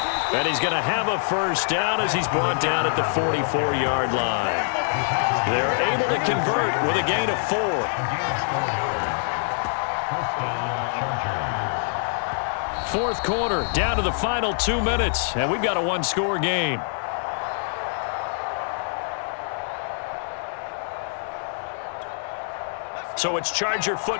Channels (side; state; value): right; silent; 62 dB below the other